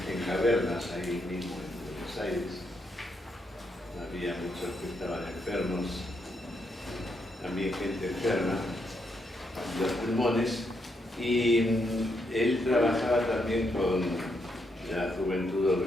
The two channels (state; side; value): normal; both; correlation 0.79